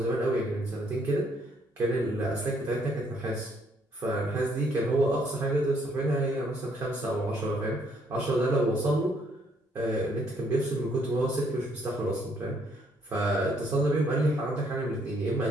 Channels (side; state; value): both; normal; correlation 0.68